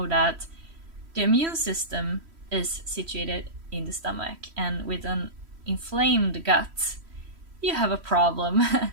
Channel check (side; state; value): left; late; 3.1 ms